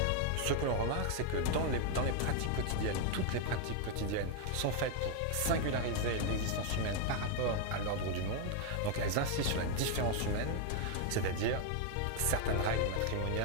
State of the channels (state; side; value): different; both; correlation 0.00